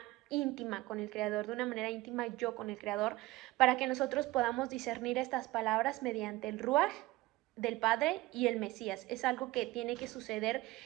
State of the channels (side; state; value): left; quieter; 18.7 dB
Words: íntima con el Creador, de una manera íntima yo con el Creador, para que nosotros podamos discernir estas palabras mediante el Ruaj del Padre y el Mesías. Es algo que tiene que suceder